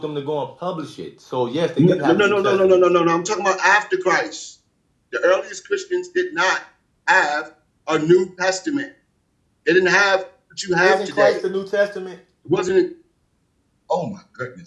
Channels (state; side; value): identical; both; correlation 1.00